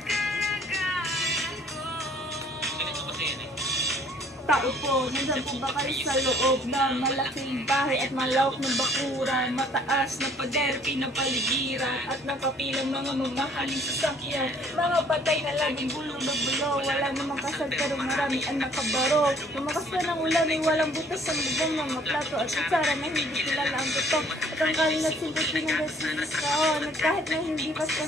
Tao po, nandyan po ba kayo sa loob ng malaking bahay at malawak ng bakuran, mataas na pader, pinapaligiran at nakapilang mga mamahaling sasakyan, mga patay na laging bulo-bulo, wala namang kasal pero marami ang nakabaro, lumakas na ng ulan ay walang butas ang bubong ng maplato at kutsara na hindi kilala ang butok at ang kaling at simple pinagasilis kaon at kahit na hindi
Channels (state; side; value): normal; both; correlation 0.58